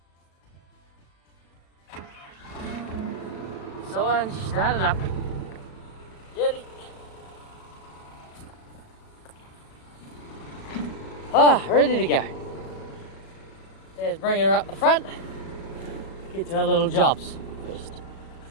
So I started up. Ready? Ready to go. Dad's bringing her up the front. Get to our little jobs first.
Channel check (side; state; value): right; late; 37 ms